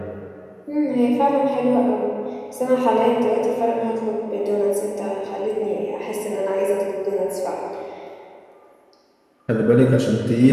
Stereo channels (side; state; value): both; identical; correlation 1.00